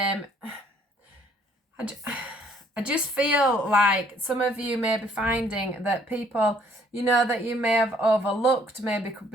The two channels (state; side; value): normal; both; correlation 0.62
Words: I just feel like some of you may be finding that people, that you may have overlooked may be